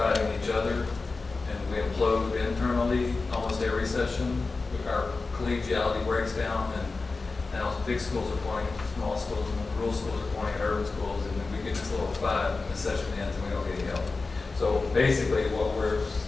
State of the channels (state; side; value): quieter; right; 3.9 dB